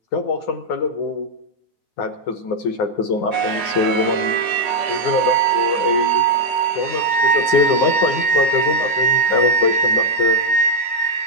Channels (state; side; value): late; right; 9.8 ms